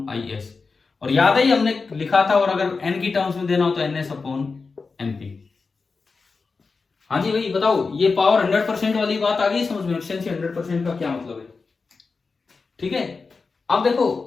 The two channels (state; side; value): quieter; right; 4.4 dB